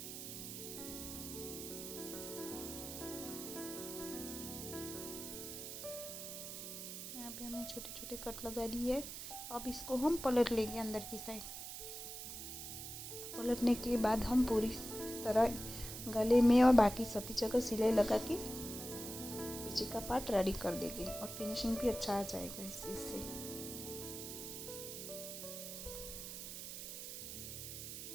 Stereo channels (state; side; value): noise; right; hiss, 8 dB below the sound